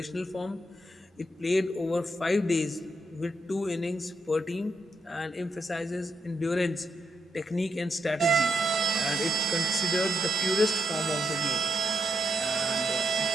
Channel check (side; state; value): both; normal; correlation 0.81